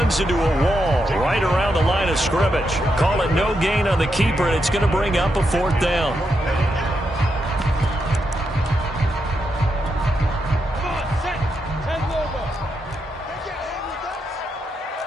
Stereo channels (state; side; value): normal; both; correlation 0.83